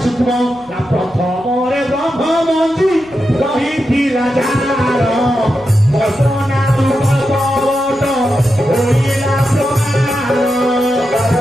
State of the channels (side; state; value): right; noise; hum, 29 dB below the sound